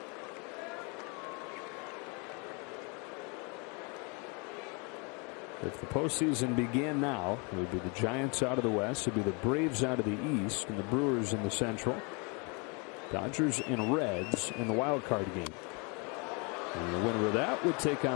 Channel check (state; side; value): quieter; right; 32.6 dB